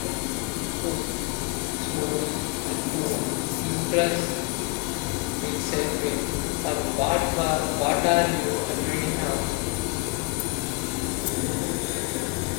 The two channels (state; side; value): quieter; right; 27.6 dB